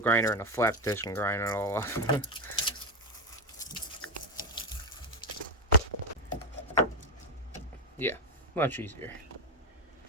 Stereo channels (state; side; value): normal; both; correlation 0.10